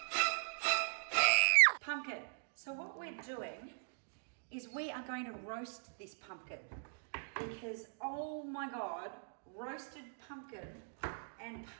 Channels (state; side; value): silent; left; digital silence